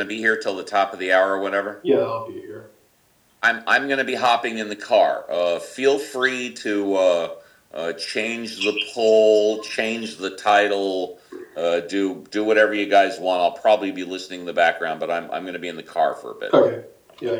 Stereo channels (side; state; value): both; identical; correlation 1.00